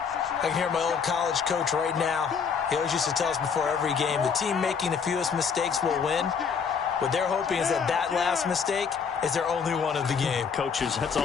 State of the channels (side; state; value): right; quieter; 6.3 dB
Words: I can hear my old college coach right now. He always used to tell us before every game, the team making the fewest mistakes will win. What they're hoping is that that last mistake is their only one of the game. Coaches, that's